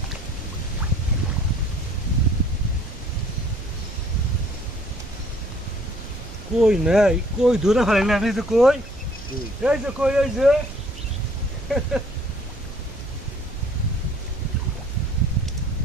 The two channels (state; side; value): normal; both; correlation 0.59